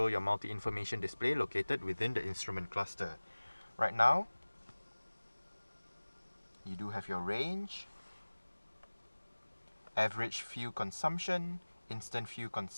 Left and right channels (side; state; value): both; inverted; correlation -1.00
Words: your multi-information display located within the instrument cluster. Right now, you do have your range, average fuel consumption, instant fuel